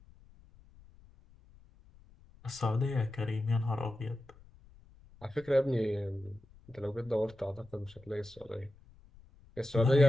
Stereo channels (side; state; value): left; noise; rumble, 25 dB below the sound